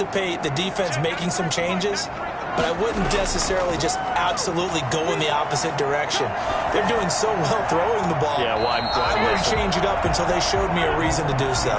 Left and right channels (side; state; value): both; identical; correlation 1.00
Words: the defense making some changes, but I wouldn't necessarily just absolutely go in the opposite direction. They're doing so well throwing the ball. Yeah, well, I wouldn't change it up until they showed me a reason to do so.